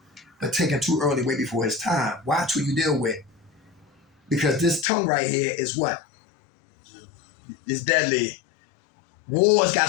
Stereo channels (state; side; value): drops out; right; at 4.9 s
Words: But taken too early, way before his time. Watch who you deal with. Because this tongue right here is what? It's deadly. Wars got